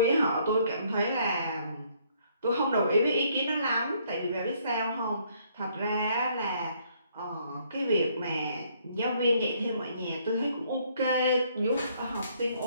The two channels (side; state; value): both; inverted; correlation -0.66